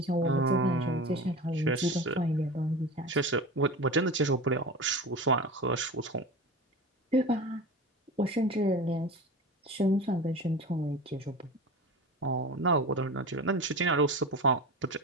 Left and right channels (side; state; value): both; normal; correlation 0.30